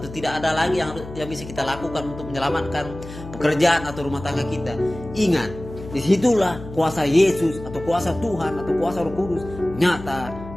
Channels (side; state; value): left; noise; hum, 13 dB below the sound